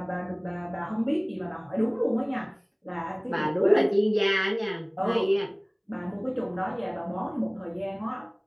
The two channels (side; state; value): both; identical; correlation 1.00